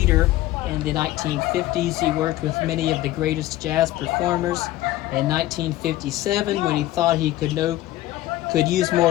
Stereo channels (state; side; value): quieter; right; 15.6 dB